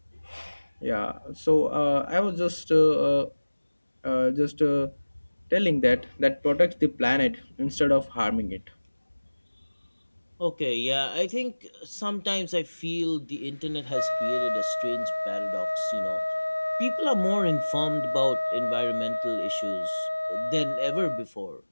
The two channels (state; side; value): inverted; both; correlation -1.00